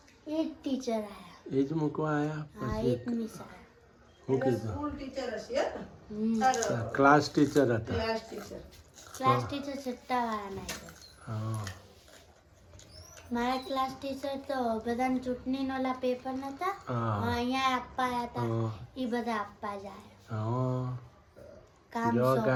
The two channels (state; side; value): identical; both; correlation 1.00